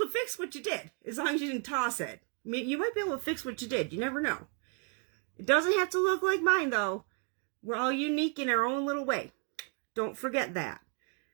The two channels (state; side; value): quieter; left; 39.7 dB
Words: to fix what you did, as long as you didn't toss it. You might be able to fix what you did. You never know. It doesn't have to look like mine, though. We're all unique in our own little way. Don't forget that.